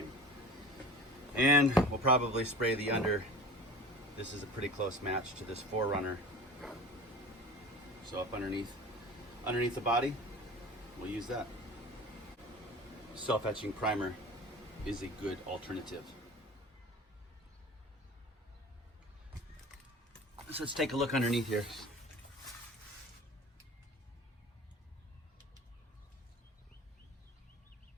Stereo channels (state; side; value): normal; both; correlation 0.38